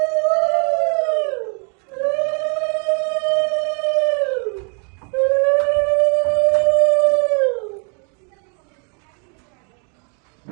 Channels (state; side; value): quieter; left; 37.7 dB